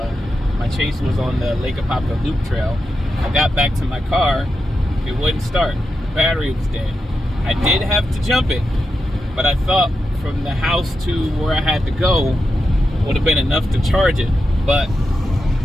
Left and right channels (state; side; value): normal; both; correlation 0.88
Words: my chase was on the Lake Apopka Loop Trail. I got back to my car, it wouldn't start. The battery was dead. I did have to jump it, but I thought from the house to where I had to go would have been enough to charge it, but